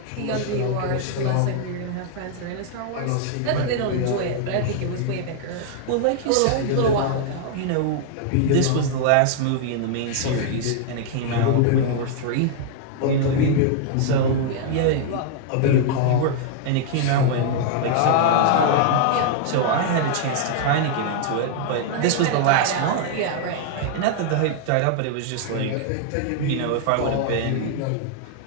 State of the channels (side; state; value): both; different; correlation -0.01